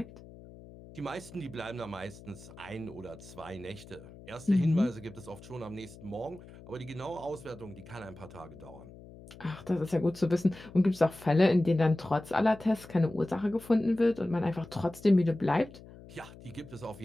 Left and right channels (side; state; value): left; noise; hum, 18 dB below the sound